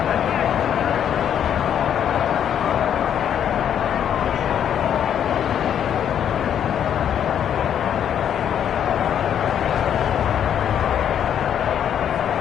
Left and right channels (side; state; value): right; quieter; 9.3 dB